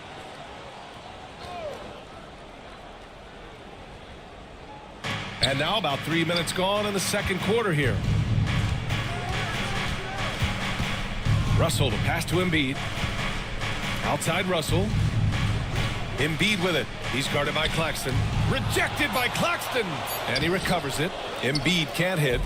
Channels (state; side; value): identical; both; correlation 1.00